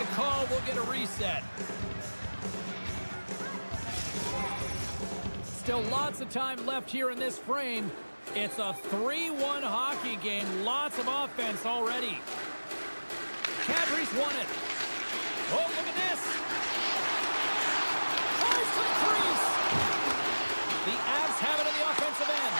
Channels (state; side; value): inverted; both; correlation -1.00